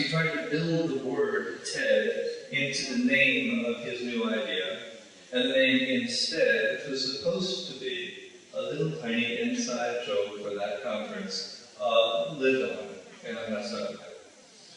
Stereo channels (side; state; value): both; identical; correlation 1.00